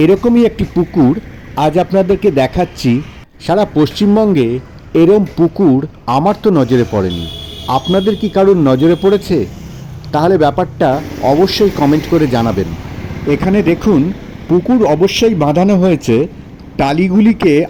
এরকমই একটি পুকুর আজ আপনাদেরকে দেখাচ্ছি। সারা পশ্চিমবঙ্গে এরম পুকুর আমার তো নজরে পড়েনি। আপনাদের কি কারোর নজরে পড়েছে? তাহলে ব্যাপারটা অবশ্যই কমেন্ট করে জানাবেন। এখানে দেখুন, পুকুর অবশ্যই বাঁধানো হয়েছে, টালিগুলিকে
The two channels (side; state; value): both; identical; correlation 1.00